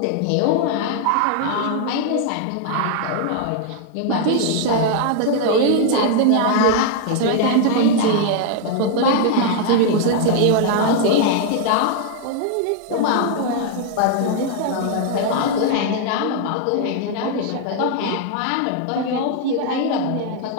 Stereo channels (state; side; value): different; both; correlation 0.00